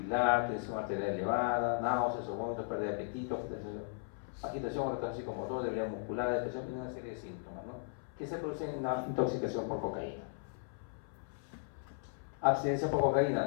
tensión arterial elevada, náuseas o vómitos, pérdida de apetito, agitación o retraso psicomotor, debilidad muscular, depresión y una serie de síntomas, ¿no? Que se producen en una intoxicación por cocaína. Abstinencia por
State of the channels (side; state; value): right; silent; 53 dB below the other